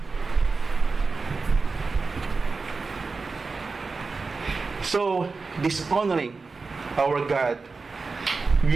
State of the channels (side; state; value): left; quieter; 4.2 dB